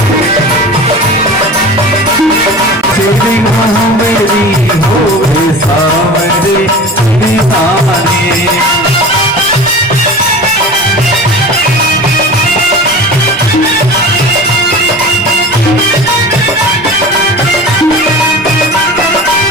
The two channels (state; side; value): normal; both; correlation 0.36